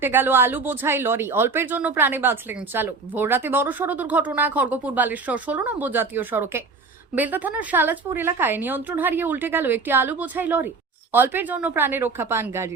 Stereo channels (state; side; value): quieter; left; 4.3 dB